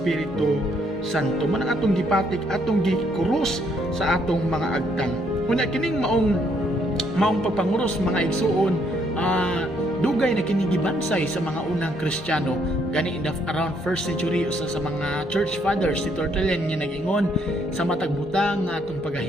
Santo. Man ang atong gipatik atong gikrus sa atong mga agtang. Kuna kining maong pagpanguros mga igsuon dugay na kinigibansay sa mga unang Kristiyano gani around 1st century usa sa mga church fathers si Tertullian nga nag-ingon sa matag butang nga atong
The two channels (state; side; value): normal; both; correlation 0.70